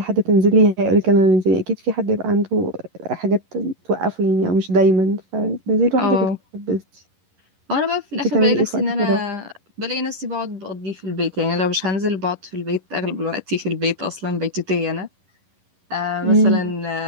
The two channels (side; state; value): left; late; 11 ms